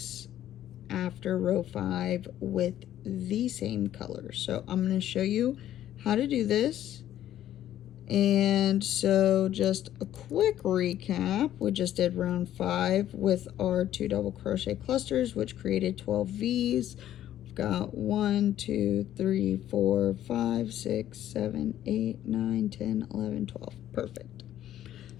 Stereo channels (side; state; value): right; quieter; 12.1 dB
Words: after row 5 with the same color. So I'm going to show you how to do this. And so just a quick recap, we just did round 5 with our 2 double crochet clusters, which created 12 V's. We've got 1, 2, 3, 4, 5, 6, 7, 8, 9, 10, 11, 12. Perfect.